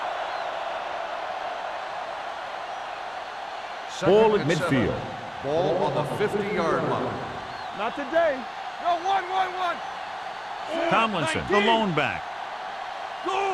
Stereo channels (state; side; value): identical; both; correlation 1.00